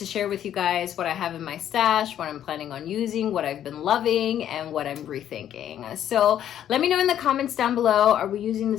share with you guys what I have in my stash, what I'm planning on using, what I've been loving, and what I'm rethinking. So let me know in the comments down below, are we using the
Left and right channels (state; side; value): quieter; right; 10.6 dB